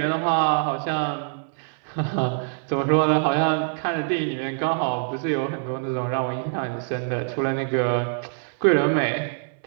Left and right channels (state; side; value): silent; left; 59 dB below the other